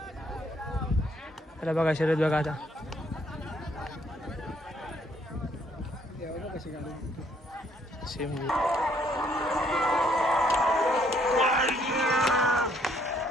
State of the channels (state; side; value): normal; both; correlation 0.67